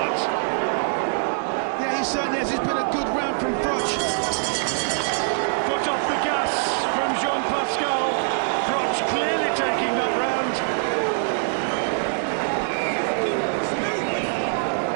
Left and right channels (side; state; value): left; silent; digital silence